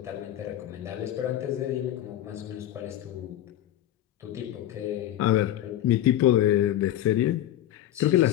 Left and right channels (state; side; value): quieter; right; 12.6 dB